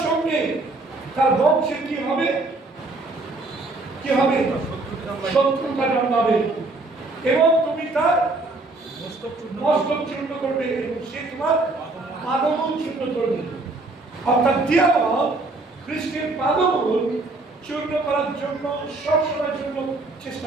সঙ্গে তার বংশে কি হবে, কি হবে, শত্রুতা জন্মাবে এবং তুমি তার মস্তক চূর্ণ করবে এবং সে তোমার পাদমূল চূর্ণ করবে। অর্থাৎ দিয়াবল খ্রিস্টের পাদমূল চূর্ণ করার জন্য সবসময়ের জন্য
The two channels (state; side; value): quieter; left; 3.2 dB